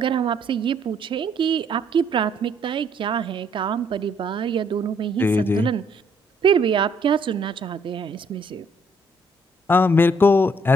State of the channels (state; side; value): normal; both; correlation 0.67